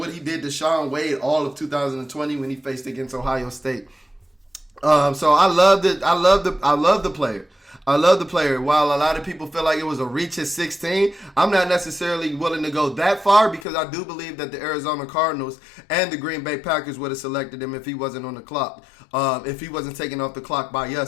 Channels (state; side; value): drops out; right; at 13.7 s